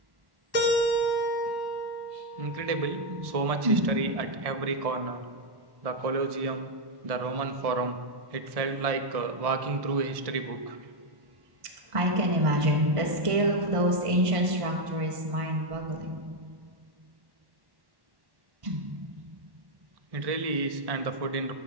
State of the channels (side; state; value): left; late; 1.1 ms